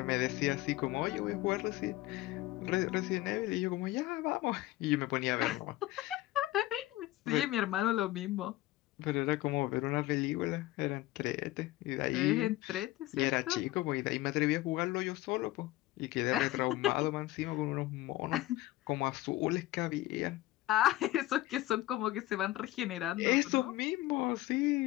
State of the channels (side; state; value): right; quieter; 17.1 dB